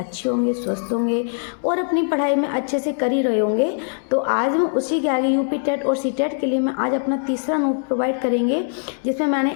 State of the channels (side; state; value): right; silent; 65 dB below the other